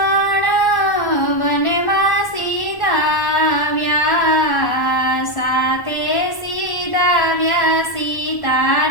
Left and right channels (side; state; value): right; late; 1.1 ms